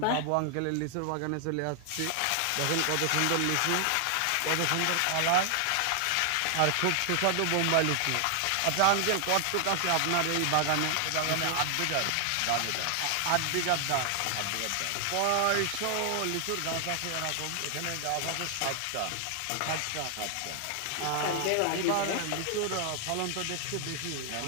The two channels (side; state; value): both; different; correlation 0.00